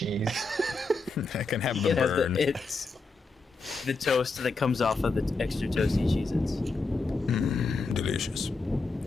I can have the burn. It's the toast that comes off of the extra toasty Cheez-Its. Delicious.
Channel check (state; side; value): quieter; right; 3.7 dB